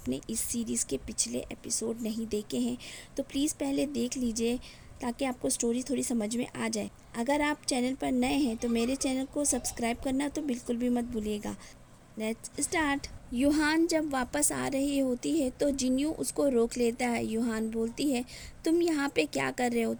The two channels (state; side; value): identical; both; correlation 1.00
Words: इस सीरीज़ के पिछले एपिसोड नहीं देखे हैं तो प्लीज़ पहले देख लीजिए ताकि आपको स्टोरी थोड़ी समझ में आ जाए। अगर आप चैनल पर नए हैं तो मेरे चैनल को सब्सक्राइब करना तो बिल्कुल भी मत भूलिएगा। Let's start. यूहान जब वापस आ रही होती है तो जिन्यू उसको रोक लेता है। यूहान बोलती है, तुम यहाँ पे क्या कर रहे हो?